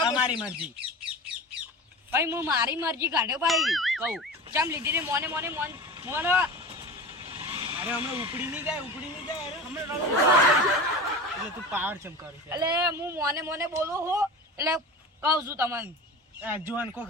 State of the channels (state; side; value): normal; both; correlation 0.32